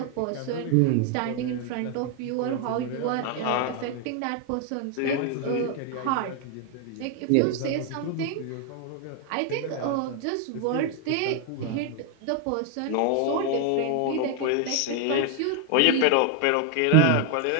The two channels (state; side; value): different; both; correlation 0.00